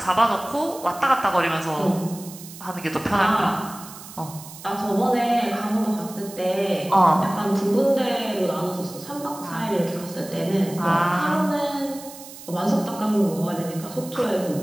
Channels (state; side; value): noise; right; hiss, 16 dB below the sound